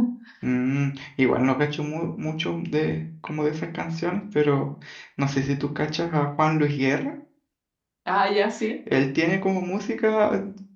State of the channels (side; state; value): both; identical; correlation 1.00